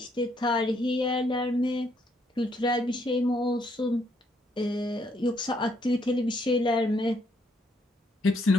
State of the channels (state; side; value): normal; both; correlation 0.72